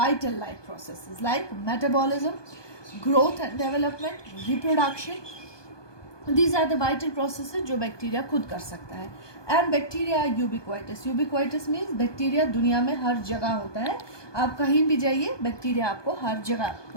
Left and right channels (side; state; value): right; late; 1.2 ms